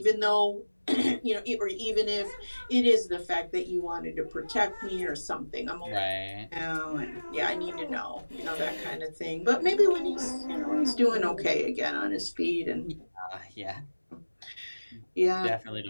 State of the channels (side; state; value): both; inverted; correlation -1.00